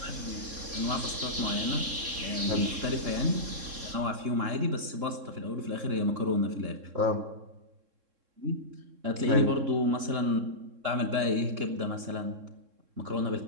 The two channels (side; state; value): left; late; 3.7 ms